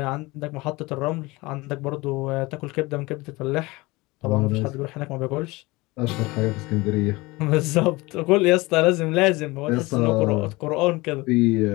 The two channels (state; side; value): quieter; right; 22.5 dB